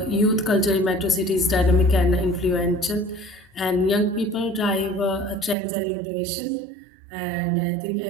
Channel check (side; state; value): left; drops out; at 5.6 s